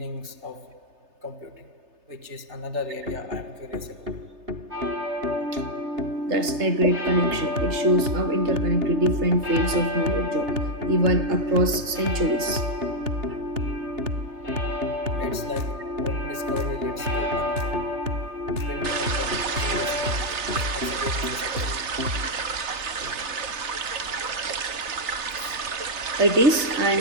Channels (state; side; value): late; left; 3.3 ms